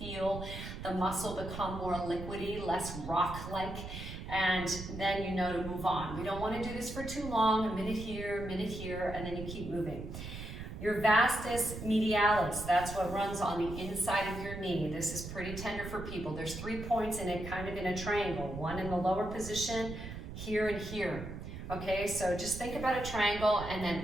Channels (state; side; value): noise; right; rumble, 9 dB below the sound